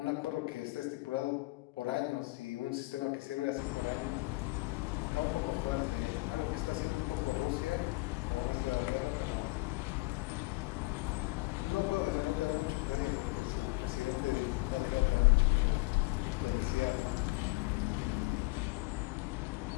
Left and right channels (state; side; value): quieter; right; 23.5 dB